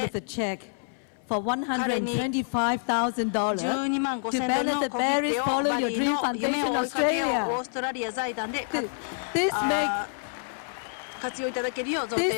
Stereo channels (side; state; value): right; silent; 60 dB below the other